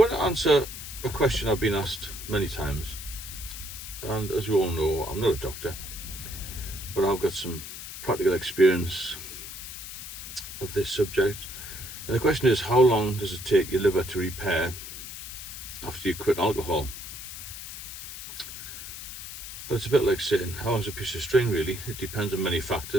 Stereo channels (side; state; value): left; noise; hiss, 10 dB below the sound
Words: to answer a question I've been asked many times, and as you all know, I'm not a doctor, but I've got some practical experience of this subject. And the question is, how long does it take your liver to repair after you quit alcohol? Well, it's a bit like saying, how long's a piece of string, really? It depends on many